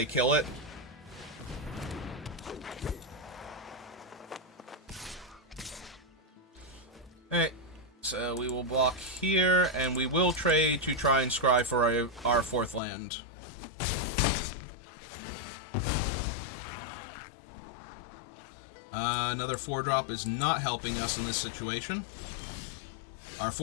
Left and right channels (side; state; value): right; drops out; at 12.8 s